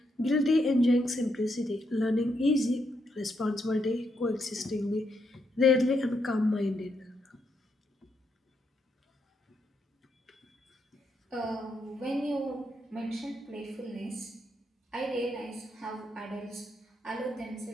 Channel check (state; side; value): normal; both; correlation 0.79